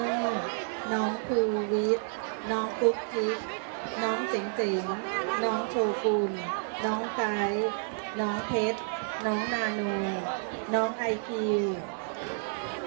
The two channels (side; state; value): left; silent; digital silence